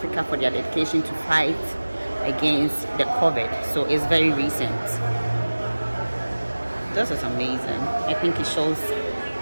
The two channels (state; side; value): inverted; both; correlation -1.00